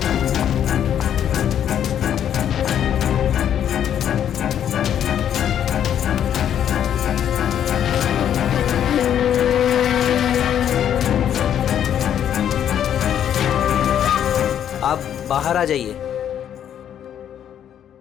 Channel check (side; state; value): right; quieter; 9.7 dB